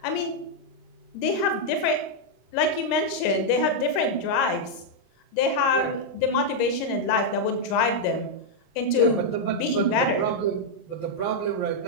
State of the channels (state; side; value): late; right; 26 ms